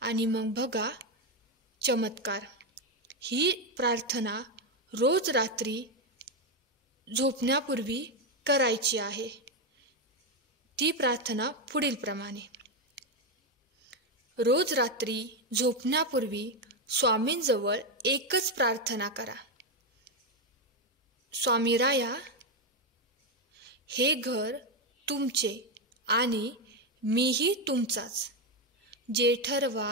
आणि मग बघा चमत्कार। ही प्रार्थना रोज रात्री झोपण्यापूर्वी करायची आहे। ती प्रार्थना पुढील प्रमाणे। रोज रात्री झोपण्यापूर्वी स्वामींजवळ एकच प्रार्थना करा। स्वामीराया, हे घर तुमचे आणि मीही तुमचाच। जे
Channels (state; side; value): normal; both; correlation 0.07